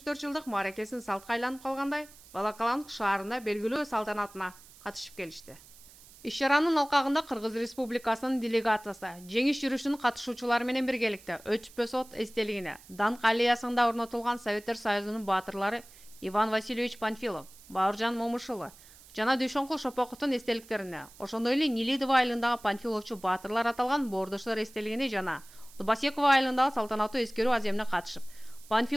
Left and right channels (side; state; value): right; noise; hiss, 22 dB below the sound